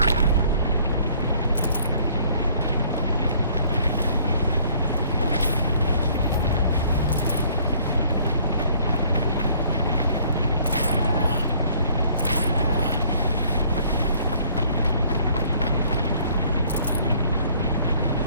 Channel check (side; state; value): both; inverted; correlation -0.59